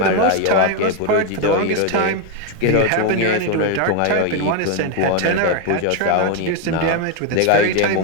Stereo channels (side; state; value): both; different; correlation 0.01